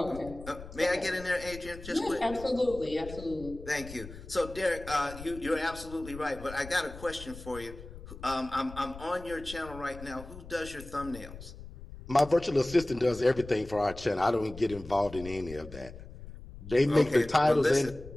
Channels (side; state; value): left; noise; rumble, 14 dB below the sound